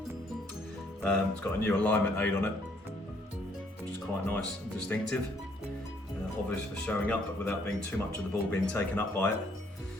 It's got a new alignment aid on it, which is quite nice and distinctive. Obvious for showing up, but without being too much of the ball being taken up by it.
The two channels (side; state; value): both; normal; correlation 0.66